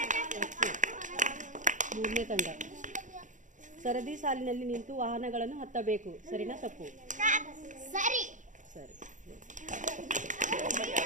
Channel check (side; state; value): left; late; 0.37 ms